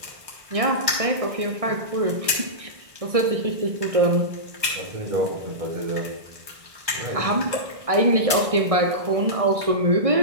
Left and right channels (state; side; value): late; left; 1.6 ms